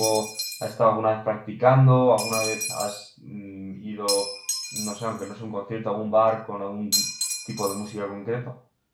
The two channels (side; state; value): both; identical; correlation 1.00